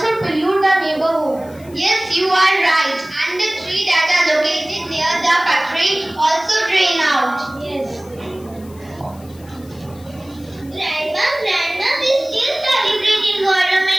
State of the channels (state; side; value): noise; left; hiss, 25 dB below the sound